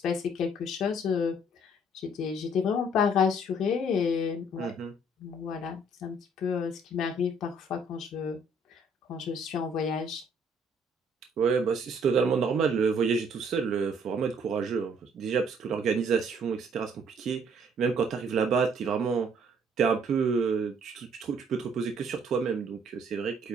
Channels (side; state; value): both; normal; correlation 0.62